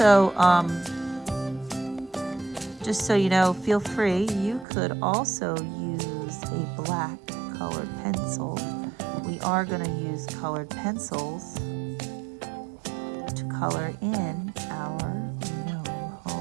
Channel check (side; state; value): left; drops out; at 4.7 s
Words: just so you know, feel free, you could also use a black colored pencil. We are going to use colored pencils to color in our gnome